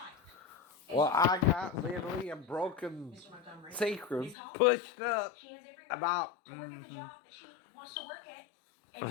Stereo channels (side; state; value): right; drops out; at 4.4 s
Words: Well, I got literally a broken Mr. Montgomery, sacrum Ms. Hall, pushed up she has every right about to work at the job that she wants to work at, and